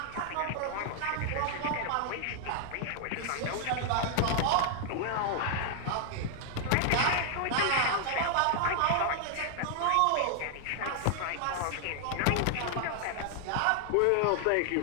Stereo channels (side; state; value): both; different; correlation 0.00